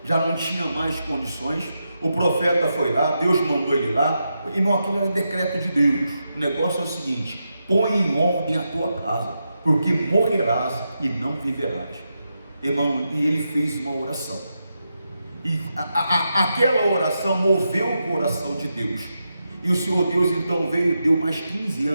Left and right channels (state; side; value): inverted; both; correlation -0.86